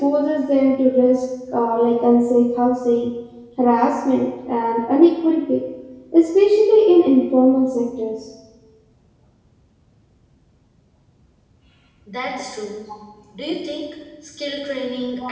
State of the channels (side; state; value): both; identical; correlation 1.00